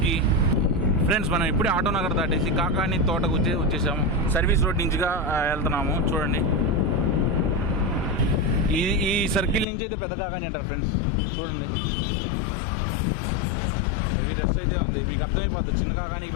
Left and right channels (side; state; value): right; drops out; at 9.7 s